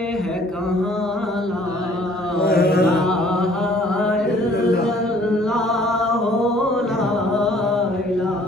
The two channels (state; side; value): normal; both; correlation 0.57